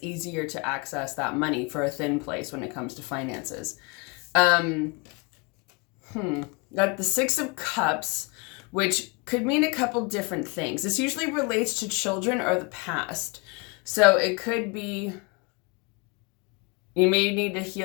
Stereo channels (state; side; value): quieter; right; 30.4 dB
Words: easier to access that money, for a thin place when it comes to finances. Got the Six of Cups, which could mean a couple different things. This usually relates to children or the past. So it could be you may need to